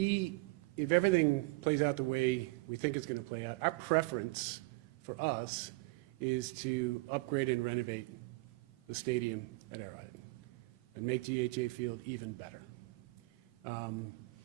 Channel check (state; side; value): quieter; left; 24.7 dB